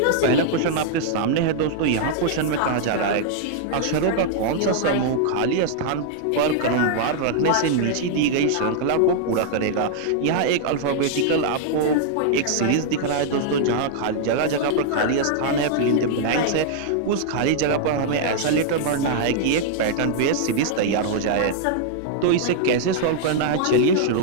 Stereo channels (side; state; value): both; different; correlation -0.01